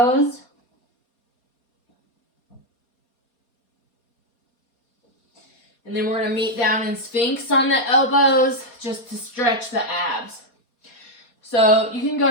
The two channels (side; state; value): right; late; 4.2 ms